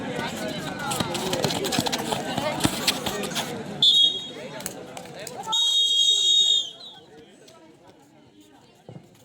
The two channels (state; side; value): identical; both; correlation 1.00